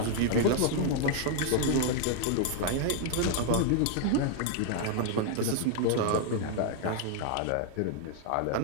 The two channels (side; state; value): both; different; correlation 0.00